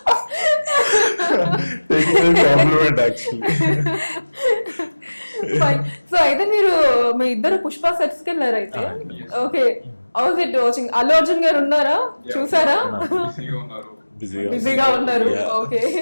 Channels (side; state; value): both; inverted; correlation -1.00